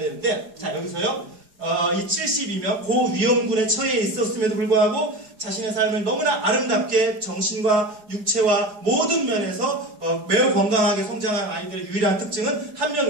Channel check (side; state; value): left; late; 4.8 ms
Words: 자 여기서요. 이 72명 고위험군에 처해 있었음에도 불구하고 자신의 삶을 너무나 아름답게 정신과 육체와 모든 면에서 매우 건강하게 성장한 아이들의 유일한 특징은 한 명